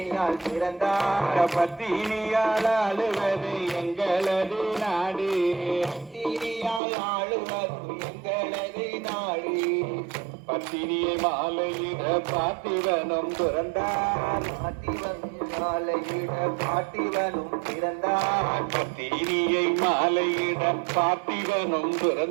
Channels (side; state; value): left; drops out; at 6.8 s